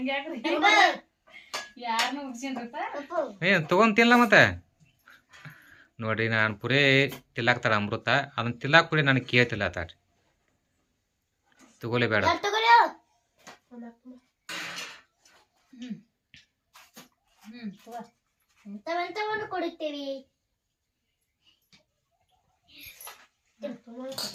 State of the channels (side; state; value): both; identical; correlation 1.00